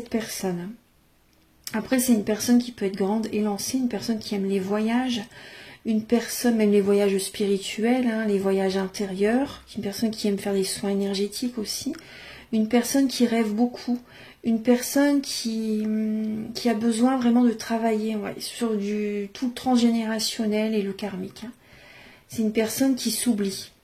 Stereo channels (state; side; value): identical; both; correlation 1.00